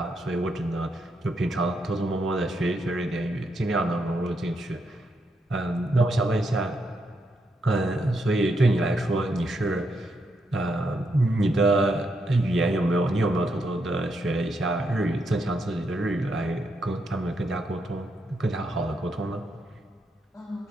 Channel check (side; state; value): both; normal; correlation 0.80